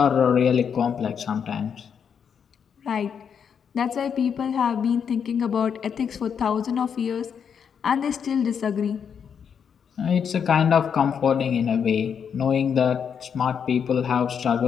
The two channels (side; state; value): right; quieter; 7.3 dB